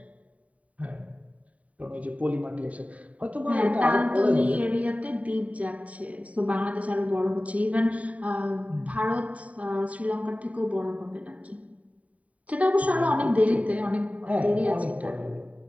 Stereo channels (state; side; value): late; left; 0.068 ms